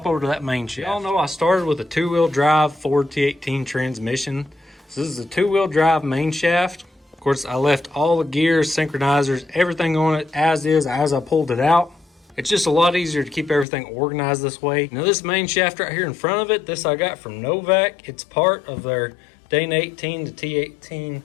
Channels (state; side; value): drops out; right; at 13.7 s